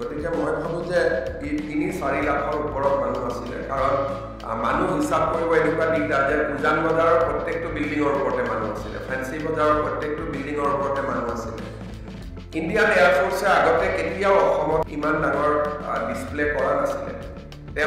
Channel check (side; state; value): both; identical; correlation 1.00